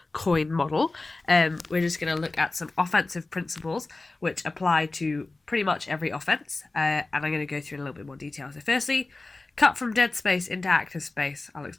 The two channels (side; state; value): right; quieter; 3.3 dB